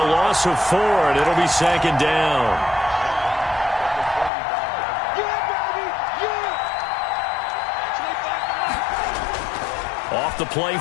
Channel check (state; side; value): drops out; right; at 4.3 s